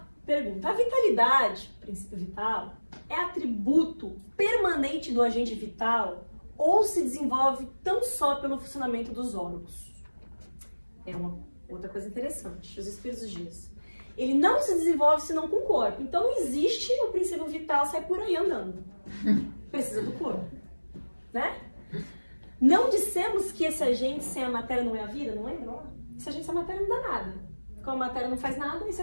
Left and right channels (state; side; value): inverted; both; correlation -1.00